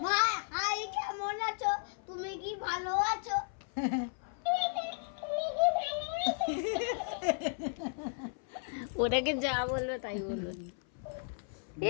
ভাই কেমন আছো? তুমি কি ভালো আছো? ওটাকে যা বলবে তাই বলবে।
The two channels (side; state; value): right; silent; 55 dB below the other